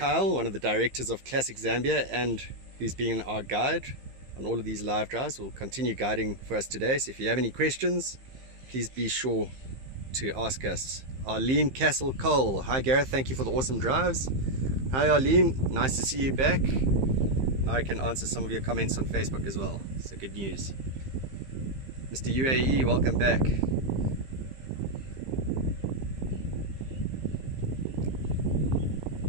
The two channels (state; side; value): late; left; 15 ms